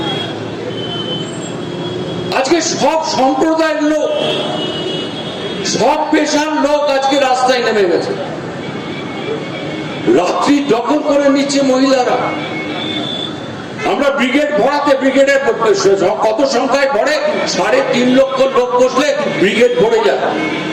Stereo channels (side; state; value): both; identical; correlation 1.00